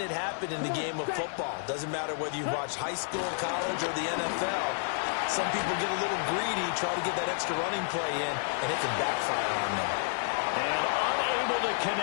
it happen in the game of football. Doesn't matter whether you watch high school, college, or the NFL. Some people get a little greedy, try to get that extra running play in, and it can backfire on them. And unable to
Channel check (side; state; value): right; silent; 57 dB below the other